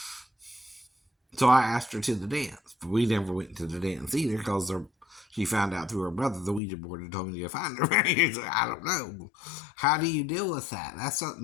So I asked her to the dance, but we never went to the dance either because she found out through her brother the Ouija board had told me to find her. So I don't know. How do you deal with that? That's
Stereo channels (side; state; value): right; drops out; at 6.6 s